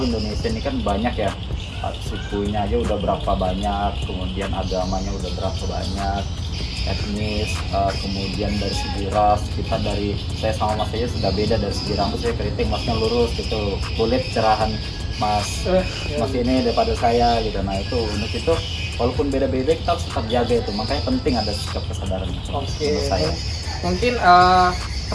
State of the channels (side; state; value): both; identical; correlation 1.00